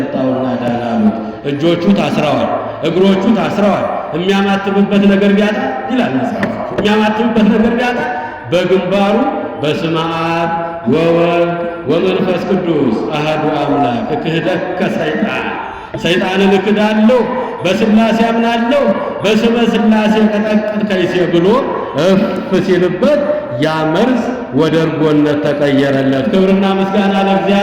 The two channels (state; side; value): identical; both; correlation 1.00